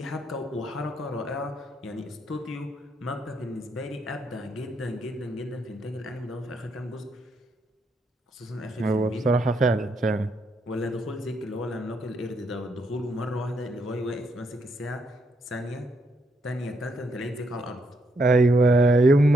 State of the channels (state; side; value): normal; both; correlation 0.76